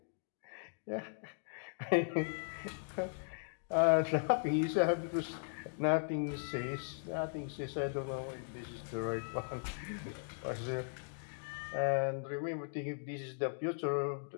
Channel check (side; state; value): right; silent; digital silence